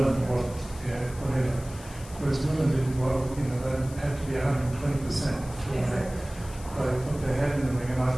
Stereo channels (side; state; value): left; noise; hiss, 18 dB below the sound